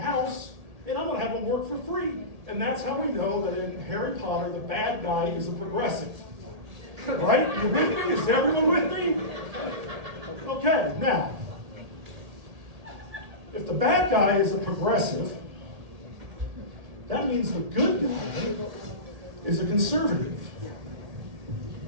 and I'm going to have them work for free. And that's how we know that in Harry Potter, the bad guy is a progressive. Right? You with me? Is everyone with me? Okay, now, if the bad guy is a progressive, that means the good guy is a conservative.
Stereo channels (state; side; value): late; left; 1.8 ms